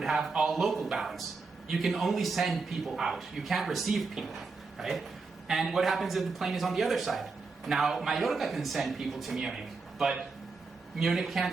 have all local balance. You can only send people out. You can't receive people, right? And what happens if the plane is on the other side? Now, Mallorca can send people to Munich, but Munich can't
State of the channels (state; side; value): quieter; left; 4.2 dB